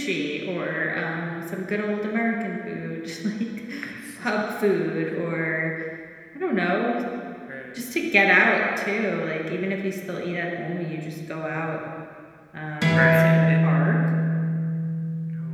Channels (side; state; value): both; identical; correlation 1.00